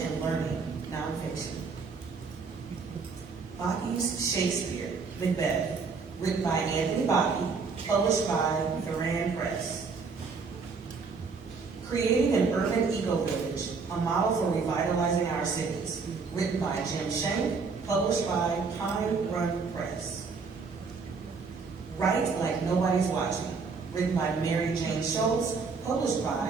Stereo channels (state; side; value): quieter; left; 4.8 dB